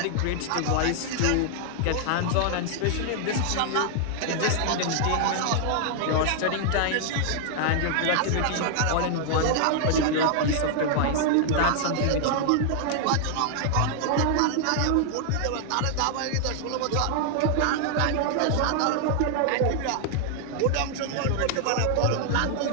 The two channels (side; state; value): both; different; correlation 0.00